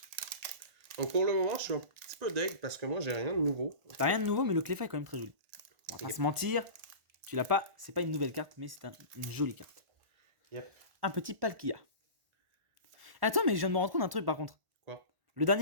Donc pour le moment, je suis un petit peu deg parce que moi, j'ai rien de nouveau. T'as rien de nouveau, mais le Cleffa est quand même très joli. On va pas se mentir, tu l'as pas, c'est pas une nouvelle carte, mais c'est une jolie carte. Yep. Un petit Palkia. Attends, mais je viens de me rendre compte d'un truc par contre. Quoi? Le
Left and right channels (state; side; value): late; left; 1.5 ms